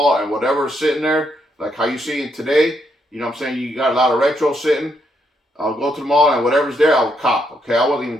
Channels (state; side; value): normal; both; correlation 0.76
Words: and whatever's sitting there, like how you see it today, you know what I'm saying? You got a lot of retro sitting. I'll go to the mall, and whatever's there, I'll cop. Okay, I wasn't